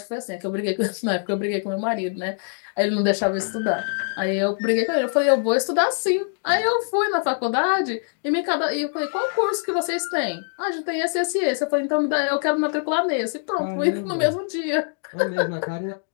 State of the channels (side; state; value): right; silent; 63 dB below the other